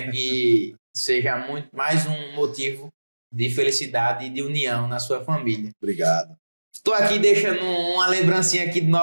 Que seja mais um motivo de felicidade e de união na sua família. Obrigado. Estou aqui deixando uma lembrancinha aqui do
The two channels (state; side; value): inverted; both; correlation -1.00